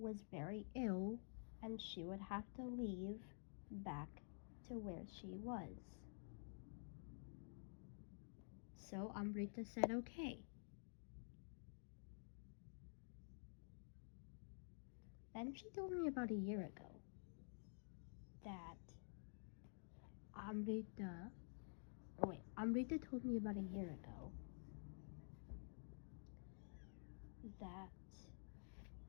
very ill, and she would have to leave back to where she was. So Amrita said okay. Then she told me about a year ago that Amrita told me about a year ago that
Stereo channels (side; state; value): right; silent; digital silence